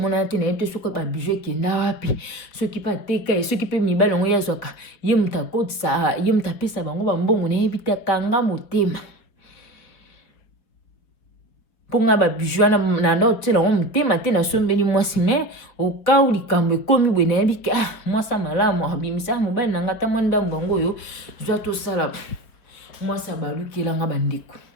te na ete soko ba bijou ke na wapi soki pa teka soki pe mibala ngo ya zoka ye mutakotsa ye mutapesa bango ba mbongo na yebita kanga motema ponga ba bijou na ndo tela ngo mutema te na sombeli mwasi me okau likambo ekomi bwe na yebika mwasa malamu abimisa mobali na ngata mwanda mbongo yo zwa to sala mwasa balukela nga bandeko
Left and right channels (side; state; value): right; late; 4.8 ms